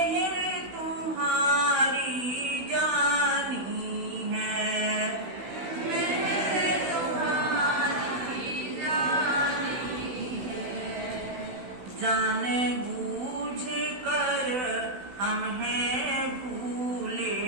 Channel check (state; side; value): late; left; 16 ms